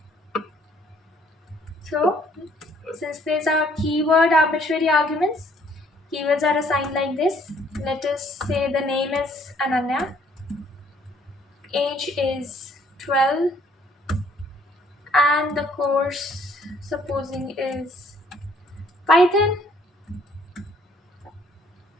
So since these are keyword arbitrary arguments, keywords are assigned like this. Let us say the name is Ananya, age is 12, and the course supposing is Python.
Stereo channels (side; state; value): both; normal; correlation 0.62